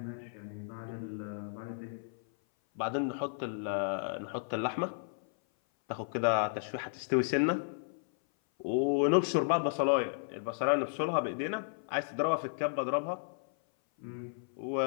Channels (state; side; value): silent; right; 55 dB below the other